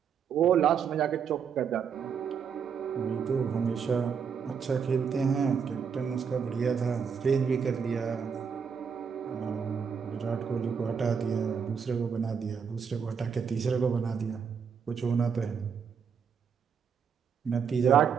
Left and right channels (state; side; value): quieter; left; 6.7 dB